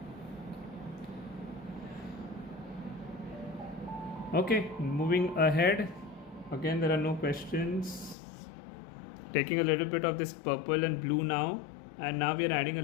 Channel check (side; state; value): right; drops out; at 8.2 s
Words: Okay, moving ahead. Again, there are no questions. Taking a little bit of this purple and blue now, and now we are adding a